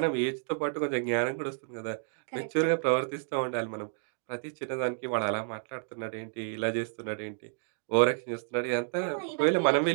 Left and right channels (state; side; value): silent; left; digital silence